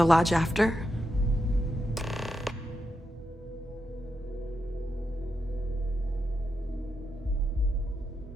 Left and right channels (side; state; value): both; normal; correlation 0.85